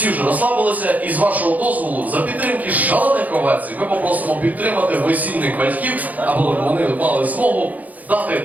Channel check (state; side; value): late; left; 0.078 ms